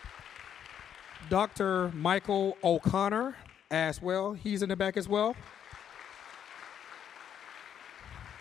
Dr. Michael O'Connor as well. He's in the back as well.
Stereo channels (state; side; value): quieter; right; 9.1 dB